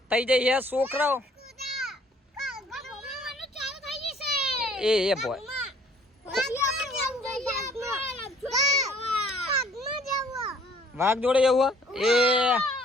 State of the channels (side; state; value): both; normal; correlation 0.58